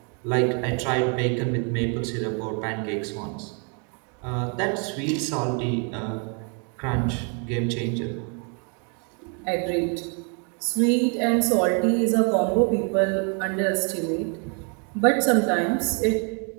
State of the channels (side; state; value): left; quieter; 38.5 dB